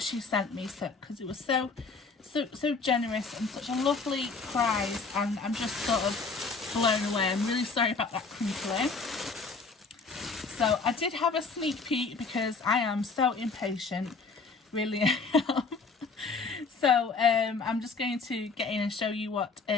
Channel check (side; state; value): right; quieter; 4.4 dB